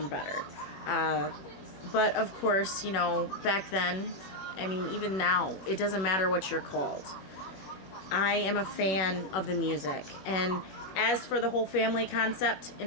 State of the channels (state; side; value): late; right; 21 ms